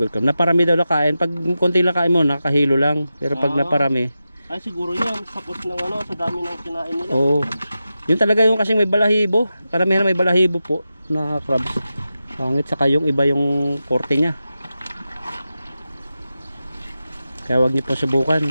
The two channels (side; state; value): both; inverted; correlation -0.92